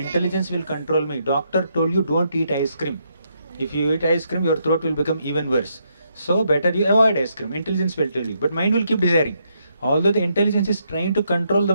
will control me. Doctor told you don't eat ice cream. If you eat ice cream, your throat will become even worse. So better you avoid ice cream. Intelligence will tell you. But mind will keep desiring. Although the intelligence is trying to control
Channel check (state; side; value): inverted; both; correlation -0.77